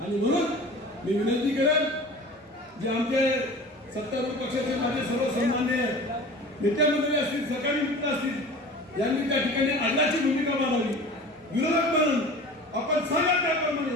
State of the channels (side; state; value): both; normal; correlation 0.39